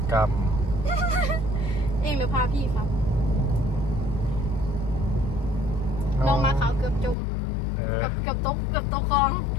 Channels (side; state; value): right; drops out; at 7.2 s